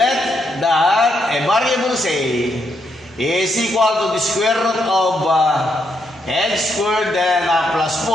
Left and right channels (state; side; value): normal; both; correlation 0.78